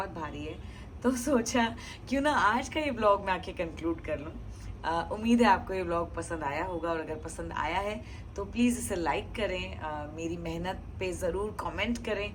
भारी है। तो सोचा क्यों ना आज का ये ब्लॉग मैं आके कंक्लूड कर लूँ। उम्मीद है आपको ये ब्लॉग पसंद आया होगा, और अगर पसंद आया है तो प्लीज़ इसे लाइक करें, मेरी मेहनत पे ज़रूर कमेंट करें,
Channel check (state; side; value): identical; both; correlation 1.00